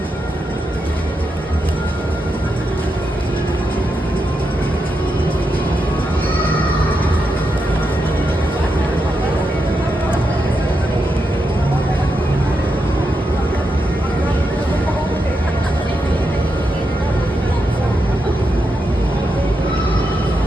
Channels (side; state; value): both; normal; correlation 0.85